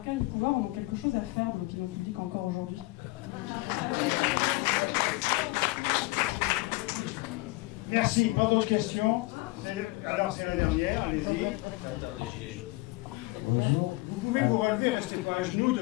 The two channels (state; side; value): quieter; right; 22.6 dB